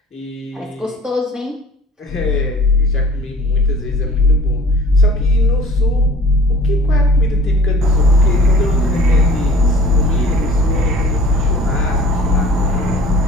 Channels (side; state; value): both; normal; correlation 0.47